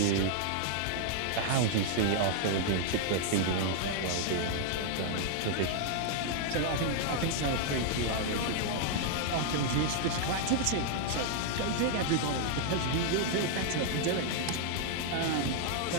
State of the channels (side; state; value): both; different; correlation -0.01